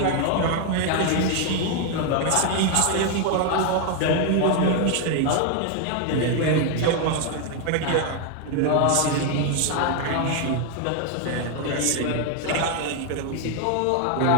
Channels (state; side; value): different; both; correlation 0.01